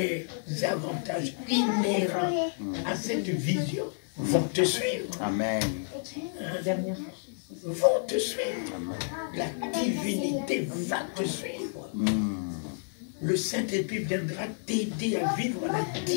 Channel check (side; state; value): right; silent; digital silence